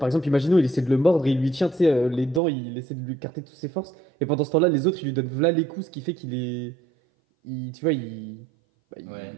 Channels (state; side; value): drops out; left; at 2.4 s